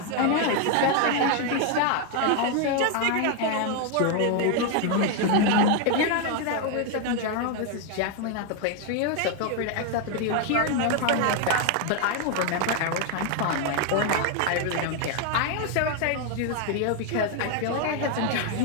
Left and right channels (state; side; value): different; both; correlation 0.01